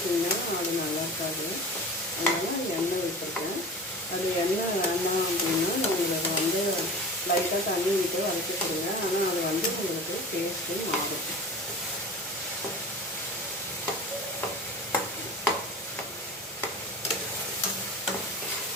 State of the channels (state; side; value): normal; both; correlation 0.34